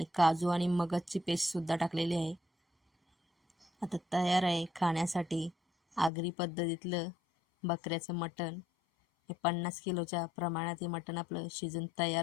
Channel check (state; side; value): drops out; right; at 6.1 s